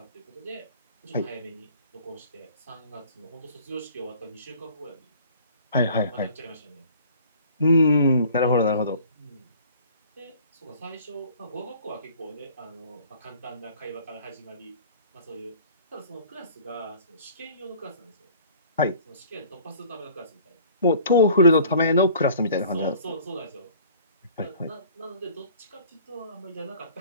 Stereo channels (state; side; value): inverted; both; correlation -0.51